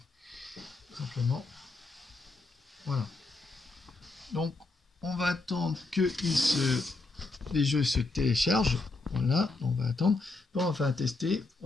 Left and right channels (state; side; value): quieter; right; 3.4 dB